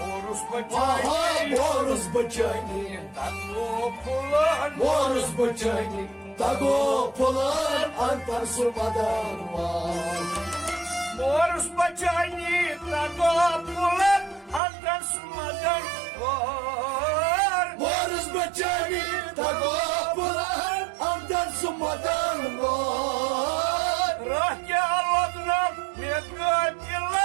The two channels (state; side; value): drops out; left; at 14.6 s